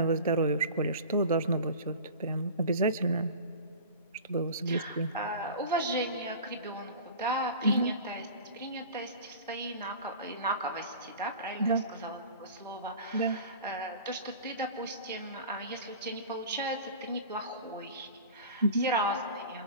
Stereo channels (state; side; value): inverted; both; correlation -0.37